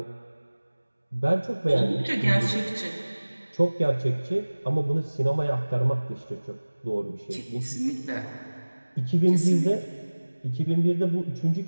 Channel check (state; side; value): inverted; both; correlation -1.00